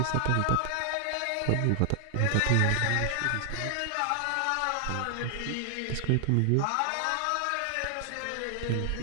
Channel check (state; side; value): different; both; correlation 0.00